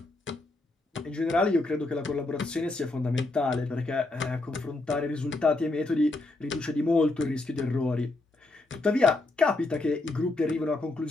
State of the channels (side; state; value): right; quieter; 3.0 dB